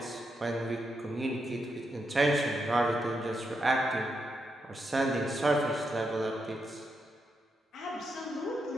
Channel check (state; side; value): normal; both; correlation 0.83